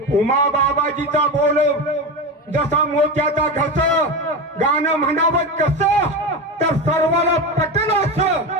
उमा बाबाजीचा बोल जसा मोत्याचा घस, गाणं म्हणावं कसं तर सर्वाला पटलं असं,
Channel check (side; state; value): both; normal; correlation 0.20